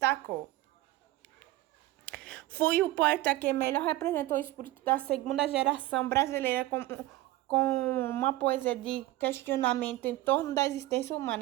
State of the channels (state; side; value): quieter; left; 16.9 dB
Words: Foi o poeta que melhor representou o espírito da segunda geração brasileira com uma poesia de questionamento em torno da existência